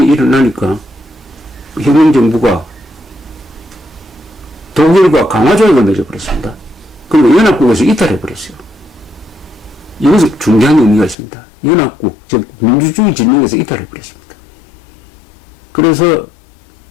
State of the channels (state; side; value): drops out; right; at 11.2 s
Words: 일어나니까 혁명정부가 독일과 강화조약을 맺어버렸습니다. 그리고 연합국에서 이탈해버렸어요. 이것은 중요한 의미가 있습니다. 연합국, 즉 민주주의 진영에서 이탈해버렸습니다. 그래서